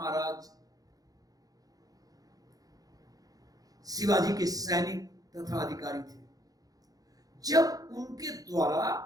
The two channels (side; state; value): left; late; 0.18 ms